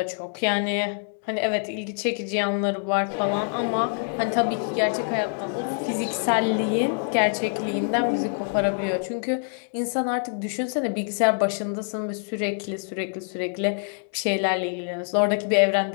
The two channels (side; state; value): right; silent; 61 dB below the other